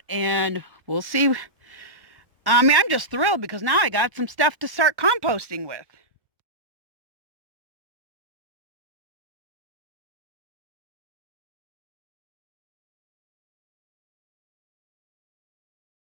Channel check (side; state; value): left; late; 1.1 ms